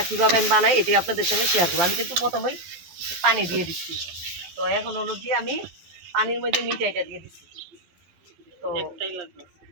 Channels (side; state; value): left; late; 12 ms